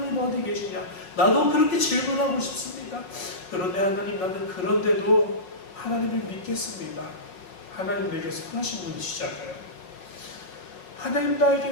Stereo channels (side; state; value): right; late; 5.4 ms